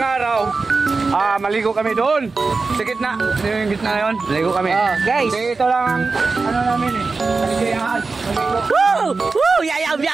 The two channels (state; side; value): quieter; left; 4.1 dB